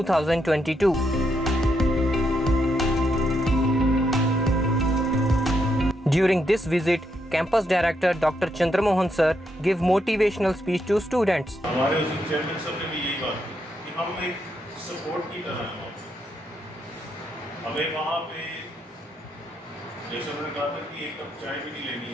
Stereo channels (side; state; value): both; normal; correlation 0.79